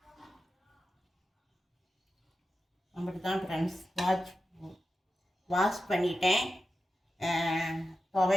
அப்படி தான் ஃப்ரெண்ட்ஸ், வாஷ் பண்ணிட்டேன்.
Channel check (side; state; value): both; normal; correlation 0.91